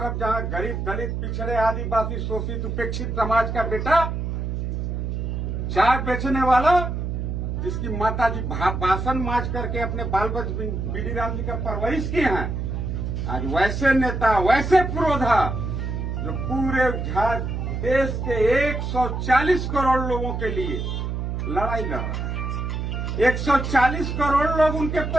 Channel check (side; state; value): right; noise; hum, 3 dB below the sound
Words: जहां गरीब दलित पिछड़े आदिवासी शोषित उपेक्षित समाज का बेटा चाय बेचने वाला जिसकी माता जी बासन माज करके अपने बाल बच्चे बीडी राम जी का परवरिश किए हैं, आज वैसे नेता वैसे पुरोधा जो पूरे देश के 140 करोड़ लोगों के लिए लड़ाई लड़ रहा है। 140 करोड़ लोग उनके